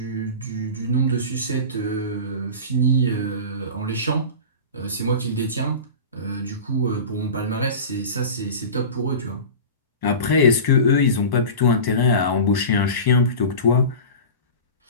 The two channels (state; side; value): inverted; both; correlation -0.32